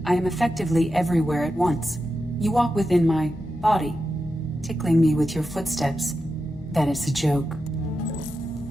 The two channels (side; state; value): both; normal; correlation 0.89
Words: I am effectively everywhere at once. You walk within my body, tickling me with your footsteps. That is a joke.